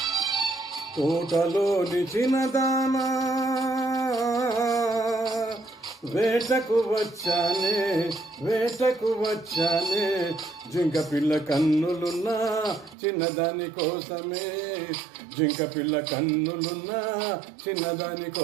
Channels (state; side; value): drops out; left; at 13.0 s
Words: తోటలోని చిన్నదానా, వేటకు వచ్చానే, వేటకు వచ్చానే, జింక పిల్ల కన్నులున్నా చిన్నదాని కోసమే, జింక పిల్ల కన్నులున్నా చిన్నదాని